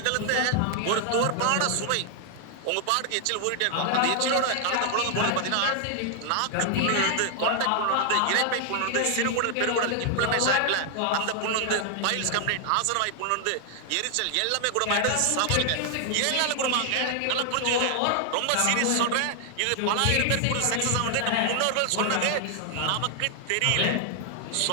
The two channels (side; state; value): both; different; correlation 0.00